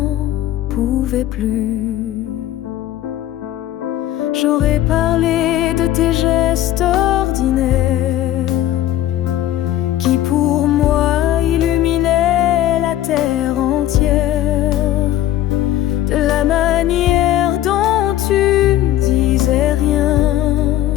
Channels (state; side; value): quieter; right; 13.0 dB